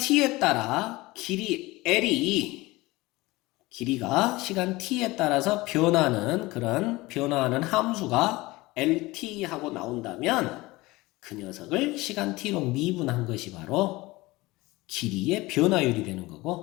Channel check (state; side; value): quieter; right; 20.8 dB